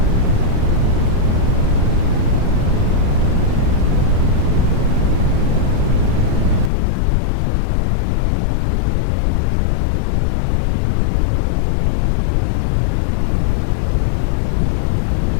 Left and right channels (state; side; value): drops out; right; at 6.7 s